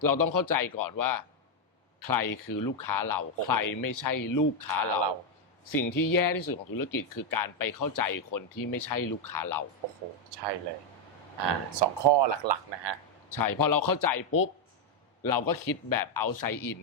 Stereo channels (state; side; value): normal; both; correlation 0.01